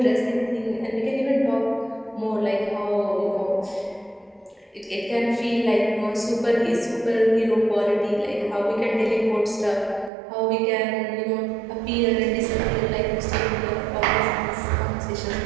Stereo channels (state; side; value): drops out; left; at 10.1 s